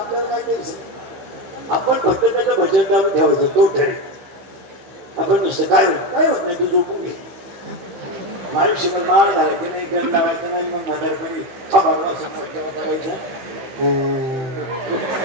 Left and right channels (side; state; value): left; late; 15 ms